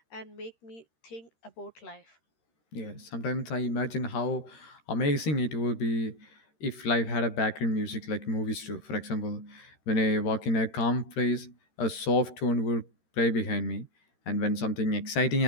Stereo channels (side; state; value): right; late; 13 ms